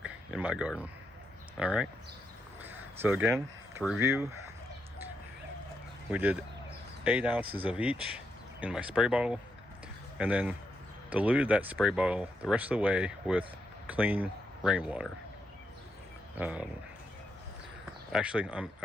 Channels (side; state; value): both; normal; correlation 0.81